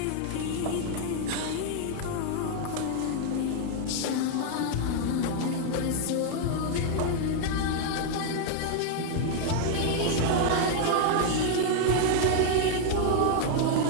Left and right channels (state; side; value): different; both; correlation 0.00